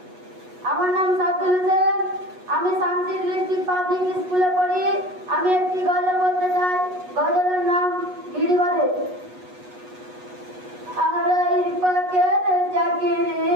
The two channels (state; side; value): late; left; 8.2 ms